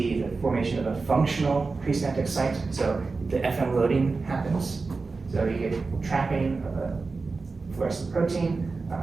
the formation of a functional presynaptic site. So the FM loading happens, So you get trapping of a fluorescent protein,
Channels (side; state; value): left; quieter; 4.1 dB